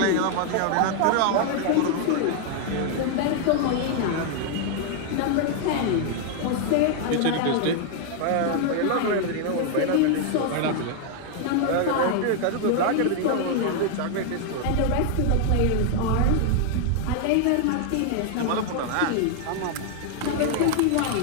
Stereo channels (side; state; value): both; different; correlation 0.00